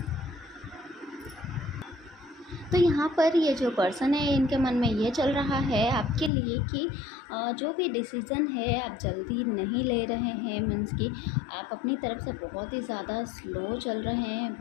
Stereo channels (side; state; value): right; drops out; at 6.3 s